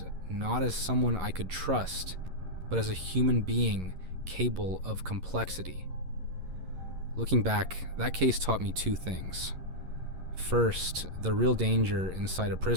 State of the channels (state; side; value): late; left; 11 ms